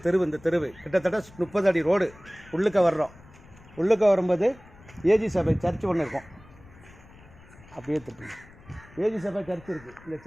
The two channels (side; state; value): left; noise; rumble, 23 dB below the sound